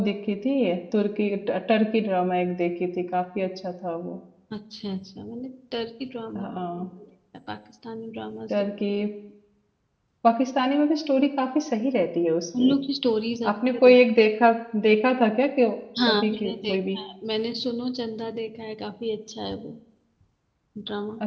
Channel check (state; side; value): identical; both; correlation 1.00